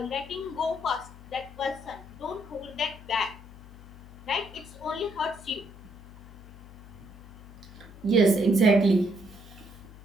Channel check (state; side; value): noise; left; hum, 17 dB below the sound